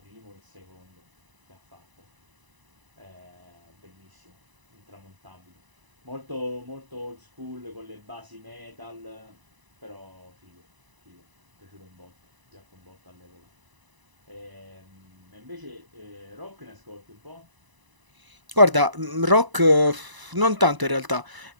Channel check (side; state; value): left; late; 1.0 ms